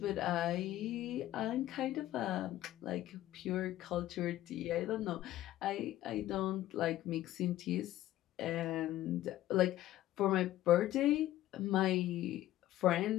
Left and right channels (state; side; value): quieter; right; 14.4 dB